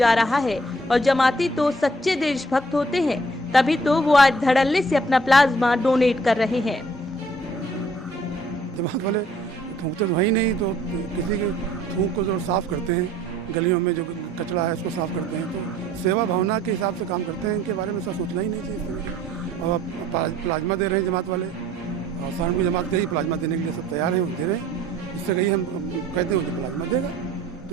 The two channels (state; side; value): normal; both; correlation 0.58